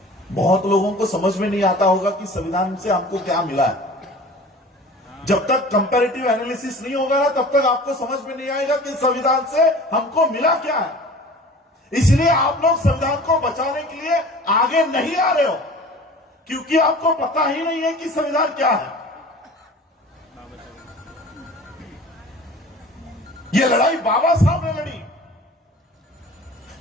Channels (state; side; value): normal; both; correlation 0.42